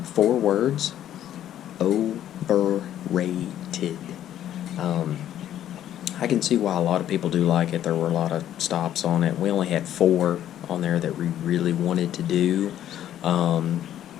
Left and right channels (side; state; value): right; quieter; 11.5 dB